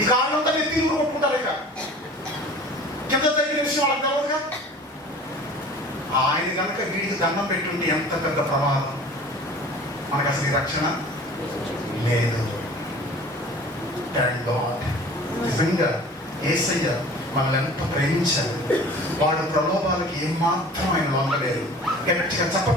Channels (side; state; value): both; normal; correlation 0.44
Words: ఈ కారణంతా మీరు తీరు కొట్టుకుంటారు. ఇక కింద దగ్గర విషయం వాళ్ళకి తెలవదుగా. ఆయన కనుక వీడికి దండం పెట్టుంటే ఎంత పెద్ద ప్రమాదం. మనకు అసలు ఈ రక్షణ లేదు. Thank God. నిజంగా యేసయ్య మనల్ని ఎంత ప్రేమించారు. వాడు ప్రలోభాలకి ఏమాత్రం ఆయన లొంగలేదు. గట్టిగా